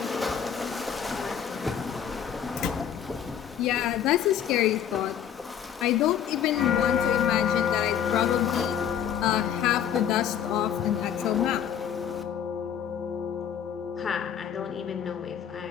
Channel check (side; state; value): right; quieter; 8.9 dB